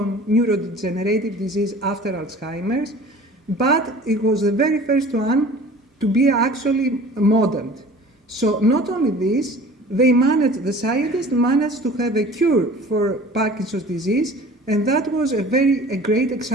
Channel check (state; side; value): normal; both; correlation 0.44